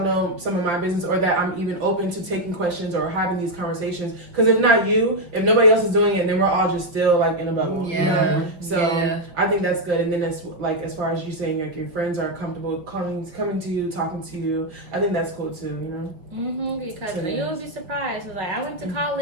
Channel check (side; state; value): left; late; 5.3 ms